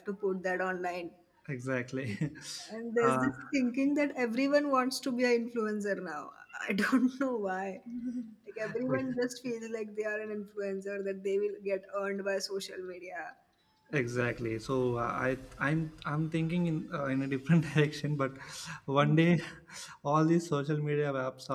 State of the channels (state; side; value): identical; both; correlation 1.00